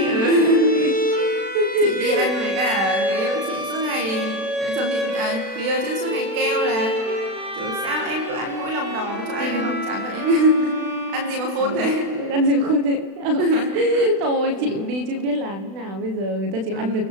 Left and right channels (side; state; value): left; late; 36 ms